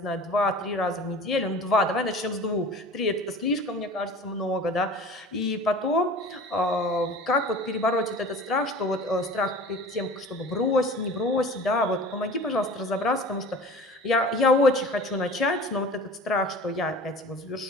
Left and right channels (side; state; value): both; normal; correlation 0.40